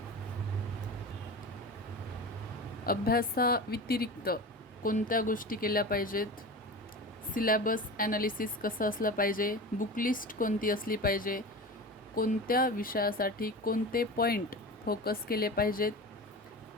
अभ्यासाव्यतिरिक्त कोणत्या गोष्टी केल्या पाहिजेत, सिलेबस ॲनालिसिस कसं असलं पाहिजे, बुक लिस्ट कोणती असली पाहिजे, कोणत्या विषयासाठी कोणते पॉईंट फोकस केले पाहिजेत,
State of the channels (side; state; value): both; normal; correlation 0.30